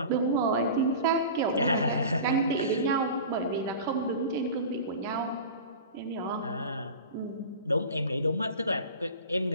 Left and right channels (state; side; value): inverted; both; correlation -0.34